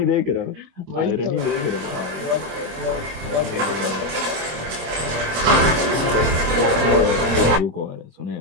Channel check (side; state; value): left; late; 26 ms